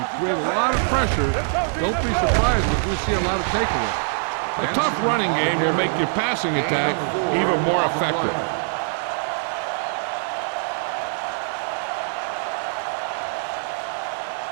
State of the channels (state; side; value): silent; left; 63 dB below the other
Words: create a lot of pressure, don't be surprised if we see a lot of takeaways. A tough running game will make your passing attack even more effective.